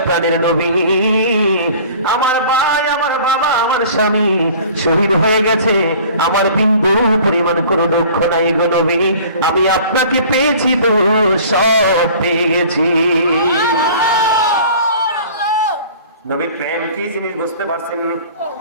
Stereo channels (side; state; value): both; inverted; correlation -0.47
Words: প্রাণের নবী, আমার ভাই, আমার বাবা, আমার স্বামী শহীদ হয়ে গেছে, আমার বিন্দু পরিমাণ কোনো দুঃখ নাই গো নবী, আমি আপনাকে পেয়েছি তো সব পেয়ে গেছি। নবীর প্রেম কি জিনিস বুঝতে পারছেন?